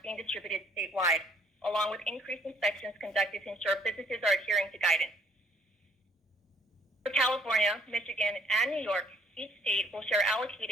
being distributed statewide, along with increased inspections conducted to ensure businesses are adhering to guidance. For California, Michigan, and New York, each state will share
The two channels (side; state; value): both; normal; correlation 0.63